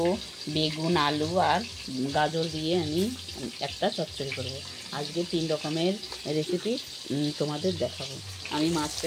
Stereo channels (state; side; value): identical; both; correlation 1.00